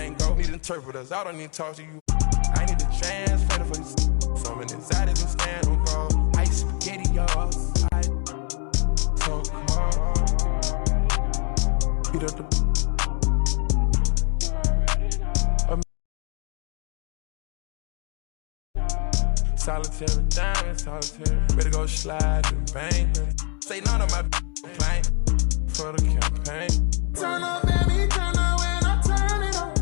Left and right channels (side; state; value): right; quieter; 35.6 dB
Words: go. Need interpreters, I don't need to talk to you. I need to translate for this. So many anxieties and stand on guard. Ice spaghetti, y'all. So cold. Beat up the. Solitary diamond, solitary. Ready to go slide and bang. Say none of my complaint for the campaign. Turn up, baby, turn up when I turn it on.